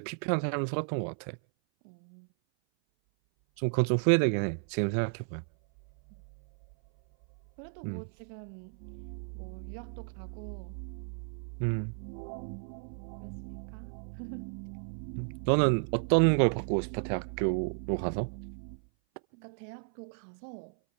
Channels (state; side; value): silent; left; 56 dB below the other